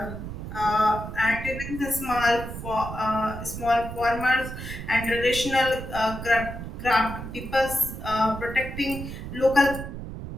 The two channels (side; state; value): right; noise; rumble, 8 dB below the sound